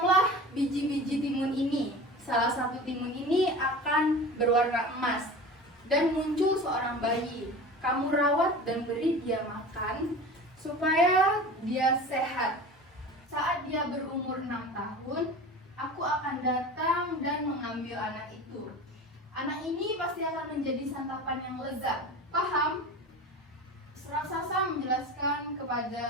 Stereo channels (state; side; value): normal; both; correlation 0.35